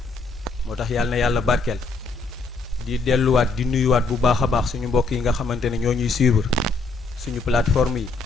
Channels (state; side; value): quieter; right; 3.7 dB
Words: moo tax yàlla na yàlla barkeel di delluwaat di nuyuwaat bu baax a baax suñu mbokk yi nga xamante ne ñoo ñuy suivre suñu plateforme yi